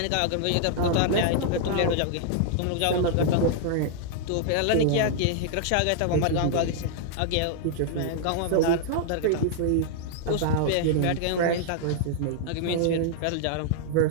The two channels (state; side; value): different; both; correlation -0.01